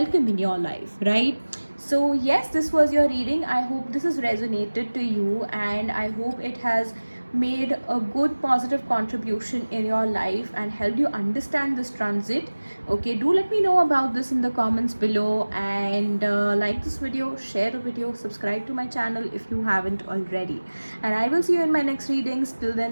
in your life, right? So yes, this was your reading. I hope this has resonated to you, and I hope it has made a good positive contribution in your life and helped you understand this transit. Okay, do let me know about this in the comments below, and like this video, share the video, subscribe to my channel if you haven't already, and I will see you in my next readings. Till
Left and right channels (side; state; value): both; inverted; correlation -1.00